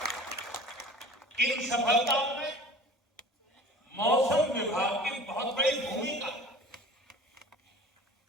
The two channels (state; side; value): normal; both; correlation 0.42